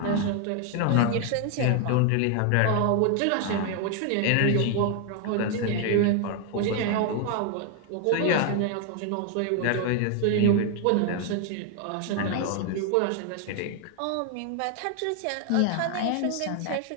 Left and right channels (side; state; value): both; different; correlation 0.00